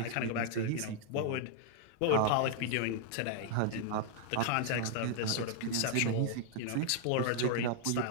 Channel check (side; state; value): both; different; correlation 0.00